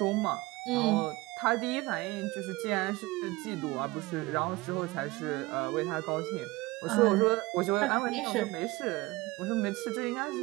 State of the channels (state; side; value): quieter; left; 21.3 dB